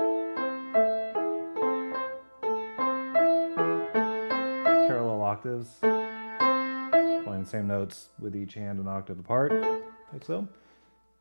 octaves, playing the same notes with each hand an octave apart, like so.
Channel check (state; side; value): inverted; both; correlation -1.00